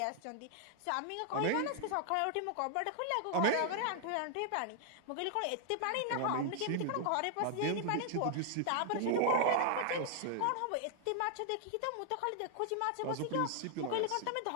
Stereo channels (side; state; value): both; different; correlation 0.00